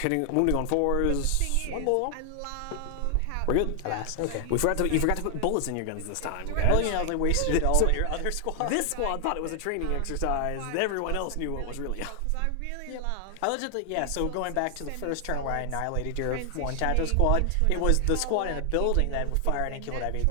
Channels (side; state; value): both; different; correlation 0.00